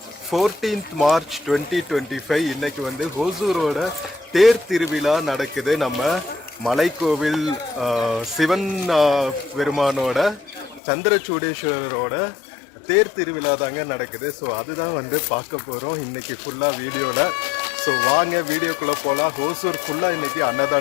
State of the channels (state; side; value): drops out; right; at 10.8 s